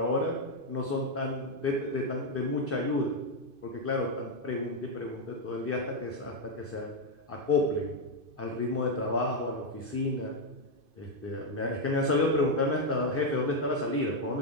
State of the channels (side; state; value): left; late; 2.5 ms